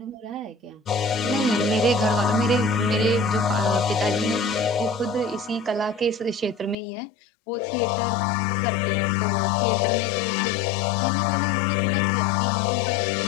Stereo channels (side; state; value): right; drops out; at 6.8 s